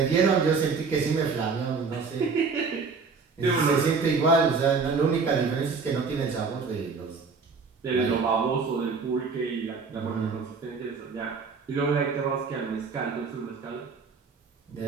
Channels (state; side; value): quieter; left; 4.9 dB